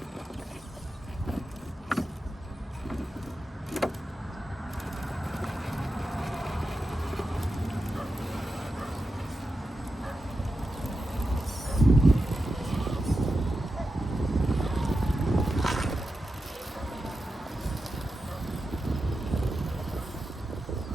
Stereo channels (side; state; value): both; normal; correlation 0.90